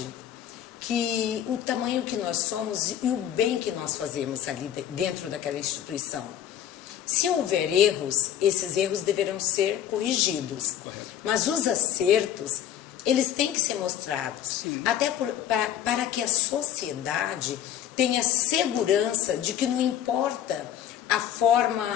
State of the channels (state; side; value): quieter; right; 10.3 dB